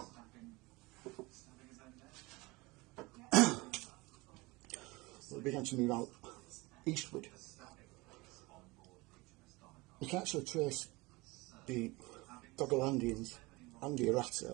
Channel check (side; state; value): left; quieter; 23.2 dB